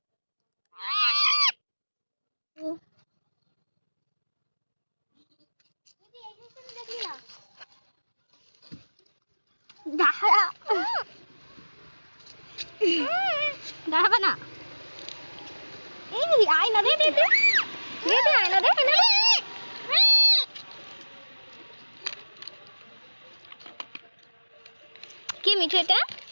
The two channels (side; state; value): both; inverted; correlation -1.00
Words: দাঁড়াবা না। এই আয়না দে দে দে দে দে আয়না দে আয়না দে। কে মিঠু এটা?